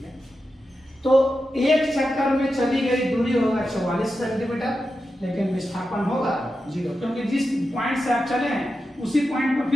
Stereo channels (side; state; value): both; normal; correlation 0.90